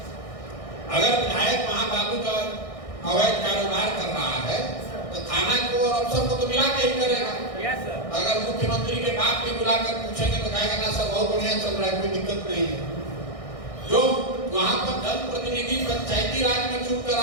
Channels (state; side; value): late; right; 1.6 ms